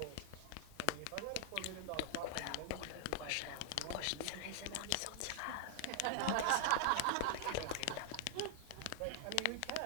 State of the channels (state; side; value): different; both; correlation 0.00